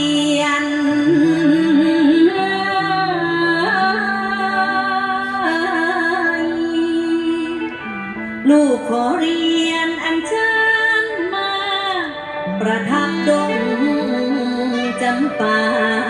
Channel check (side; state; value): both; identical; correlation 1.00